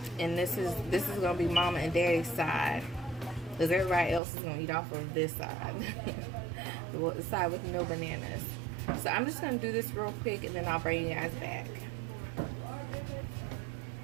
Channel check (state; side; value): drops out; left; at 4.2 s